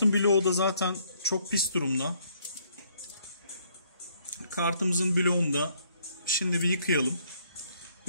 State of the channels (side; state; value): both; inverted; correlation -0.67